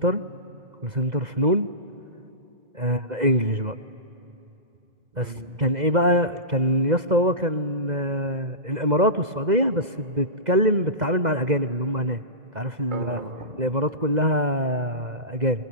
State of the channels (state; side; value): late; left; 2.0 ms